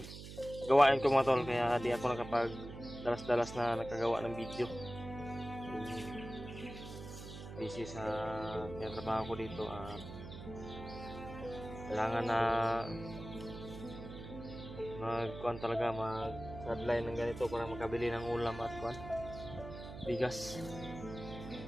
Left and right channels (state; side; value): noise; right; hum, 11 dB below the sound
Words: gawain ko mga tol, kaya di ako nakapag dalas-dalas na nakagawa ng video. Busy sa trabaho ko dito at kailangan na mag-kuhan talaga, mag-sideline ng ganito para makabili ng ulam at kuhan bigas.